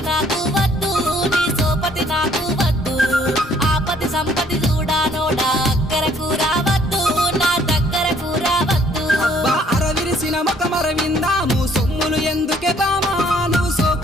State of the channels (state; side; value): normal; both; correlation 0.62